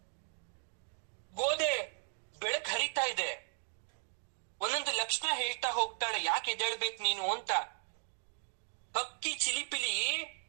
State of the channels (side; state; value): left; silent; 53 dB below the other